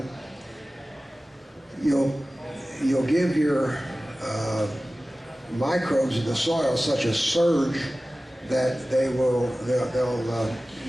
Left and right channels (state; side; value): normal; both; correlation 0.96